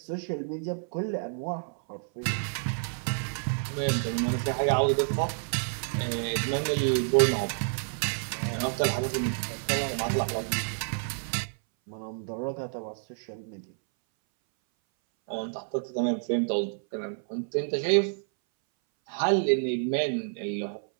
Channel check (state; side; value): silent; left; 58 dB below the other